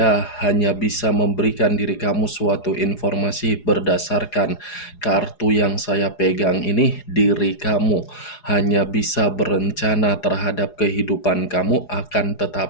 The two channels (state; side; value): late; right; 4.8 ms